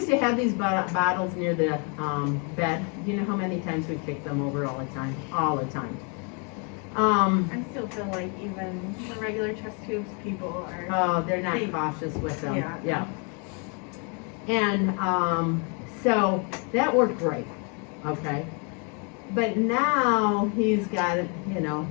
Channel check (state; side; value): quieter; right; 36.4 dB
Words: to have these bottles near the bed. You know how many times we kicked them over all the time? All the time. I still feel like even the regular chest tubes people are. Oh, they're not cautious with them. Yeah. And so that worked great, okay? But now he's got, you know,